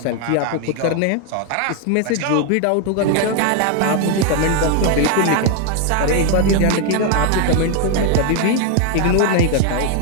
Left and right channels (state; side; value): different; both; correlation 0.00